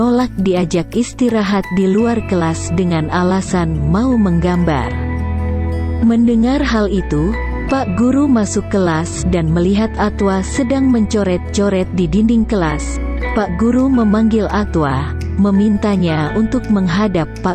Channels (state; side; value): identical; both; correlation 1.00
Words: diajak istirahat di luar kelas dengan alasan mau menggambar. Mendengar hal itu, Pak Guru masuk kelas dan melihat Atwa sedang mencoret-coret di dinding kelas. Pak Guru memanggil Atwa, memintanya untuk menghadap